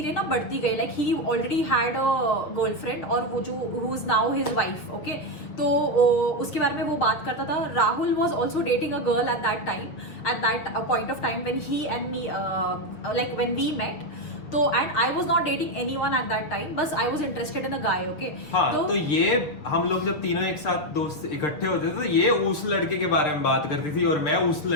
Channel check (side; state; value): right; late; 6.7 ms